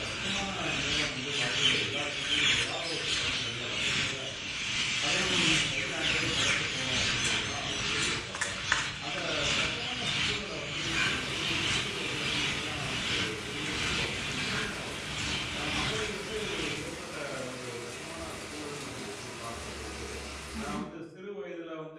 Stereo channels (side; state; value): both; identical; correlation 1.00